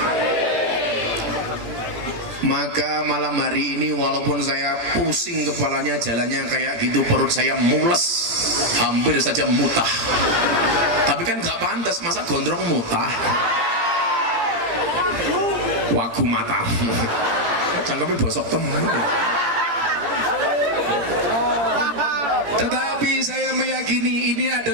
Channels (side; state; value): left; late; 17 ms